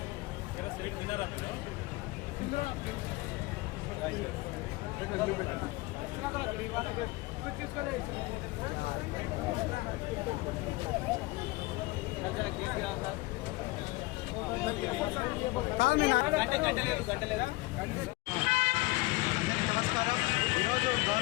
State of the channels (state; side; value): quieter; right; 22.2 dB